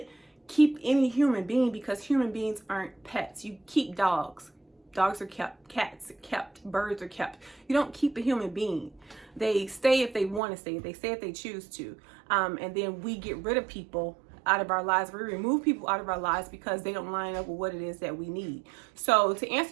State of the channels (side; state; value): left; drops out; at 10.4 s